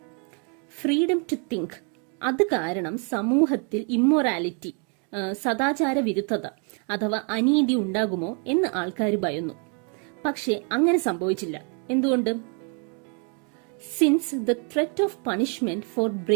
Freedom to think, അത് കാരണം സമൂഹത്തിൽ immorality, സദാചാര വിരുദ്ധത അഥവാ അനീതി ഉണ്ടാകുമോ എന്ന് ആൾക്കാർ ഭയന്നു. പക്ഷെ അങ്ങനെ സംഭവിച്ചില്ല. എന്തുകൊണ്ട്? Since the threat of punishment for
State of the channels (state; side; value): quieter; left; 39.3 dB